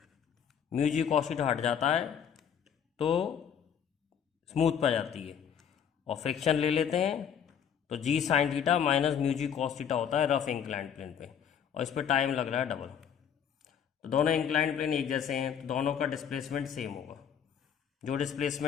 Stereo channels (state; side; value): quieter; right; 8.2 dB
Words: Mu G cos theta हट जाता है तो स्मूथ पे जाती है, और फ्रिक्शन ले लेते हैं तो जी साइन थीटा माइनस म्यू जी कॉस थीटा होता है रफ इंक्लाइंड प्लेन पे, और इस पर टाइम लग रहा है डबल। तो दोनों इंक्लाइंड प्लेन एक जैसे हैं, तो दोनों का डिस्प्लेसमेंट सेम होगा। जो